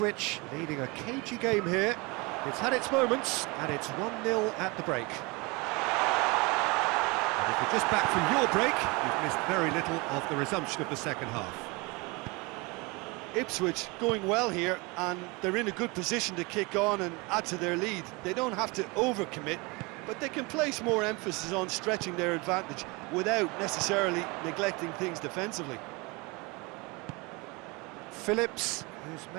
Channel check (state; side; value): quieter; left; 26.7 dB